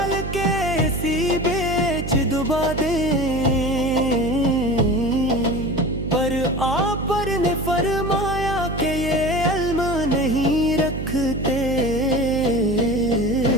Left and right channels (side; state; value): right; noise; hum, 6 dB below the sound